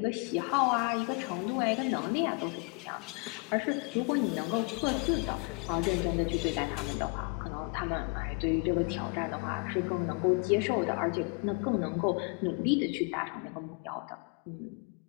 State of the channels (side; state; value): right; quieter; 33.2 dB